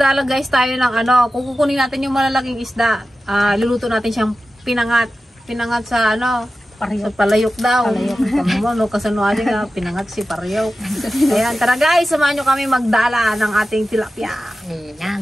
guys tayo ng kukunin natin yung malalaking isda. Luluto natin siyang pinangat. Pinangat sa sa palayok daw. Palayok. Kasano nga, pinangat si palayok. Ayan, tara guys, samahan nyo kami magdala ng ating tilapia.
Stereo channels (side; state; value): both; normal; correlation 0.93